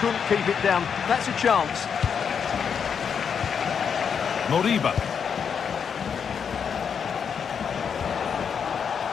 keep it down. That's a chance. Moriba.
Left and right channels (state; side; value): quieter; right; 6.9 dB